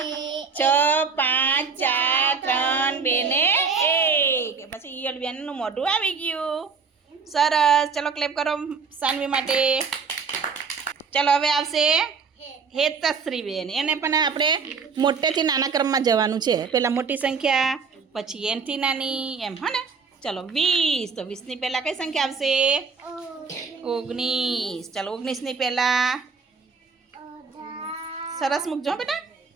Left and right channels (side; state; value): left; quieter; 5.3 dB